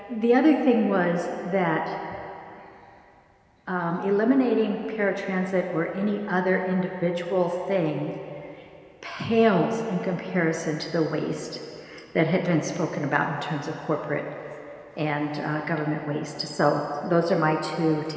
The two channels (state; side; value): identical; both; correlation 1.00